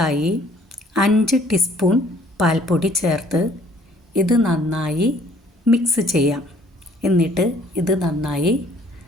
5 ടീസ്പൂൺ പാൽപ്പൊടി ചേർത്ത് ഇത് നന്നായി മിക്സ് ചെയ്യാം. എന്നിട്ട് ഇത് നന്നായി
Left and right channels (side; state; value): both; normal; correlation 0.59